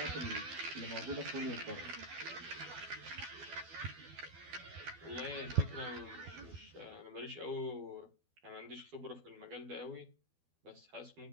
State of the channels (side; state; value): left; late; 12 ms